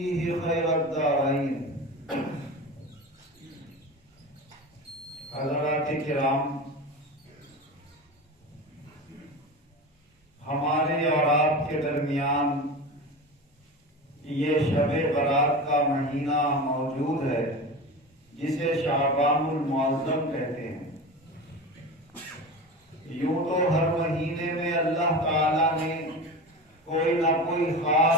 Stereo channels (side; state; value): both; normal; correlation 0.28